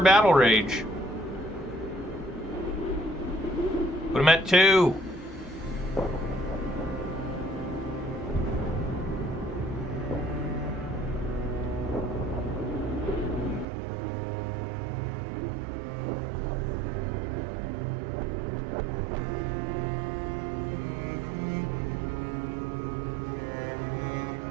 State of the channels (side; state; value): left; drops out; at 13.7 s